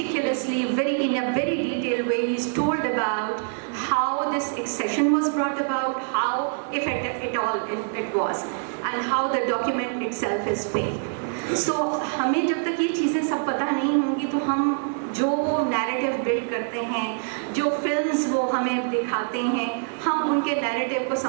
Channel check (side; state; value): left; silent; 62 dB below the other